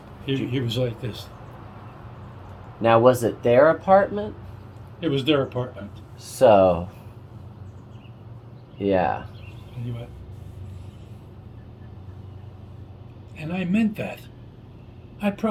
He was like this. Now, was it their apartment? It was their apartment. So, yeah. And he went, and I meant that. I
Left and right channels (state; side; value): identical; both; correlation 1.00